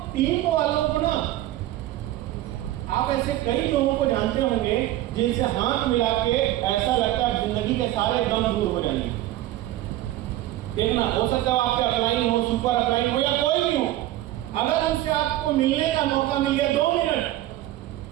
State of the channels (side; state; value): left; quieter; 14.8 dB